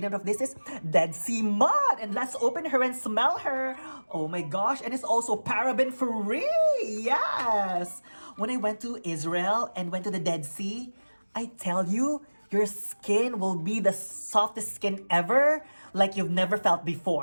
of this is Dead Sea Mud. And let's open her and smell her. Oh my gosh, and it's also paraben free. Yes! When I went to Israel and went to the Dead Sea, I tell you, your skin will be the softest skin ever, like you've never felt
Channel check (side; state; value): both; inverted; correlation -1.00